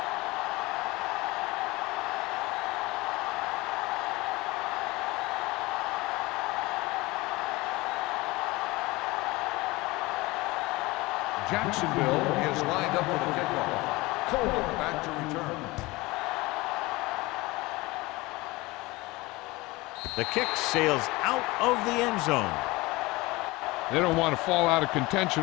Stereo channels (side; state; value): right; quieter; 21.8 dB